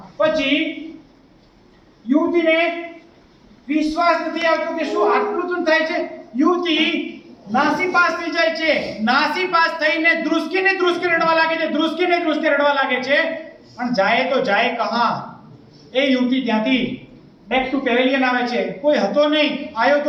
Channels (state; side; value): identical; both; correlation 1.00